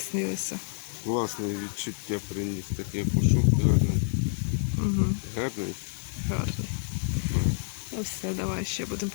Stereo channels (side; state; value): right; silent; 58 dB below the other